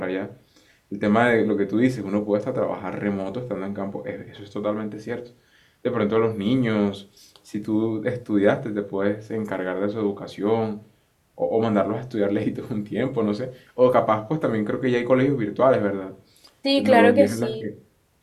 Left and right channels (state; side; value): identical; both; correlation 1.00